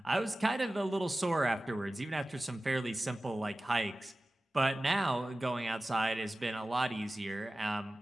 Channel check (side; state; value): both; normal; correlation 0.96